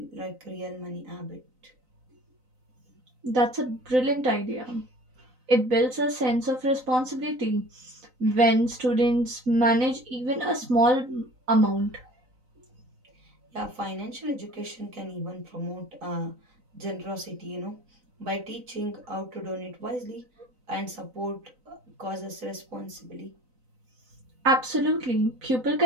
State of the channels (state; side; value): late; left; 3.9 ms